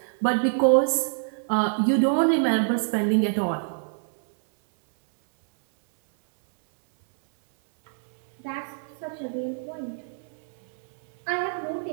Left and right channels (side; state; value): left; silent; 61 dB below the other